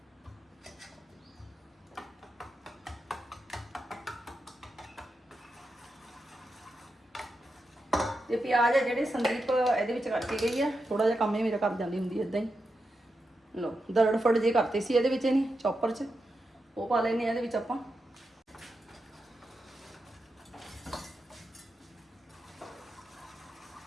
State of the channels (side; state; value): both; normal; correlation 0.87